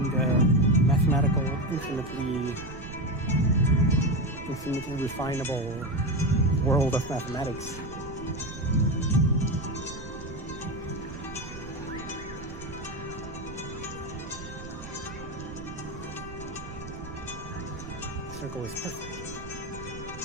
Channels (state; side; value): noise; right; rumble, 13 dB below the sound